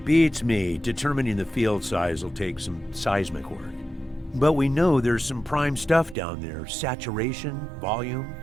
Beats me. Determining the field size will take some seismic work. But we know there's some prime stuff down there. Saturation, volume,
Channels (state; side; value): drops out; left; at 6.2 s